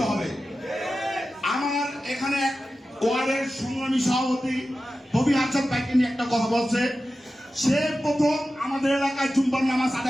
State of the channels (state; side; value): normal; both; correlation 0.93